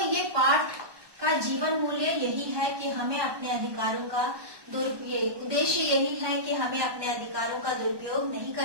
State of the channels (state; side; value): late; left; 1.2 ms